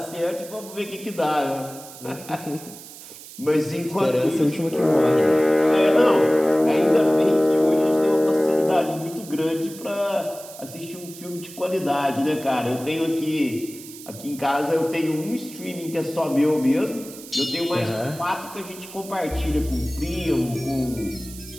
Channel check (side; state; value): right; noise; hiss, 16 dB below the sound